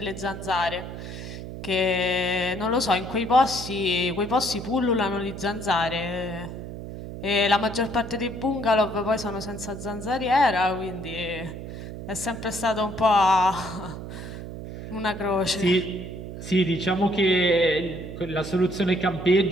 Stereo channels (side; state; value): right; noise; hum, 10 dB below the sound